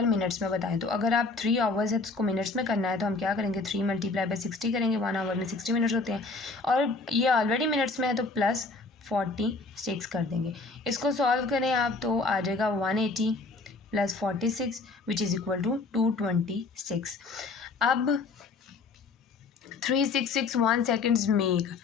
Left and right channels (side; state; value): right; quieter; 3.8 dB